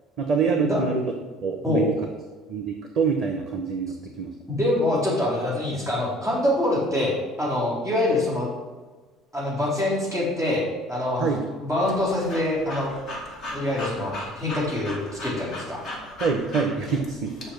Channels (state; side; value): normal; both; correlation 0.51